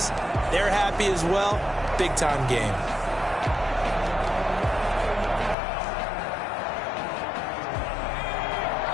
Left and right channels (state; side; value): drops out; right; at 5.6 s